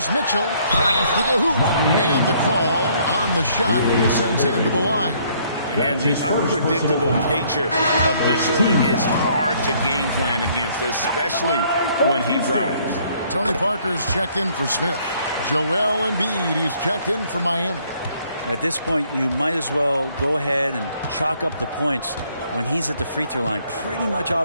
Mitchell. Drives to the hoop. And the call on the shot sends him to the line. And the unpredictable nature of Mitchell is hard to game plan against, especially when he drives. Tony Parker's checked in for Smith. Joel Embiid, he's checked in for Miami. At this point, you might as well go ahead and chalk up the points when he's at the free throw line. Pretty much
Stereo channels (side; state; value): both; inverted; correlation -0.64